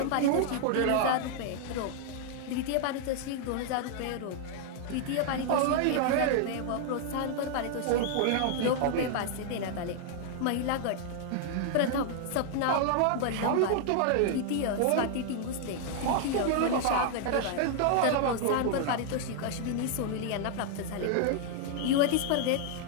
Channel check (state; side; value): different; both; correlation 0.00